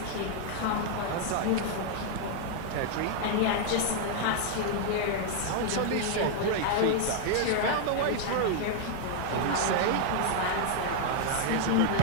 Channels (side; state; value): both; different; correlation 0.00